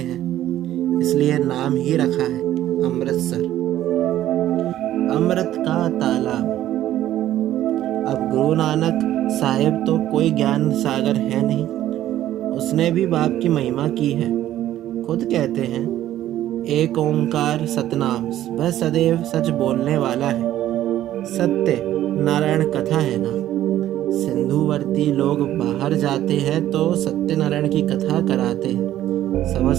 इसलिए नाम ही रखा है अमृतसर, अमृत का तालाब। अब गुरु नानक साहिब तो कोई ज्ञान सागर है नहीं, उसने भी बाप की महिमा की है। खुद कहते हैं एक ओंकार सतनाम, वह सदैव सच बोलने वाला है। सत्य नारायण कथा है ना। सिंधुवर्ती लोग बाहर जाते हैं तो सत्यनारायण की कथा कराते हैं,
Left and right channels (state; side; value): quieter; left; 12.9 dB